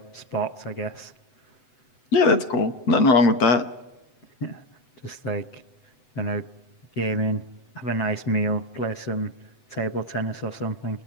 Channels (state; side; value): late; right; 7.9 ms